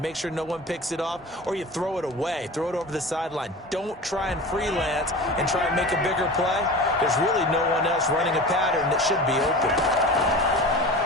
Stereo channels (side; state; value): both; normal; correlation 0.34